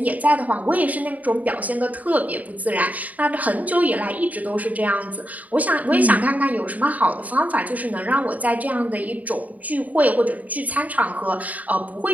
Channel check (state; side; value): late; left; 0.074 ms